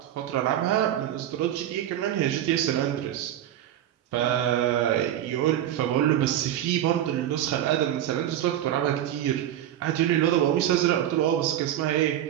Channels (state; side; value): quieter; left; 11.7 dB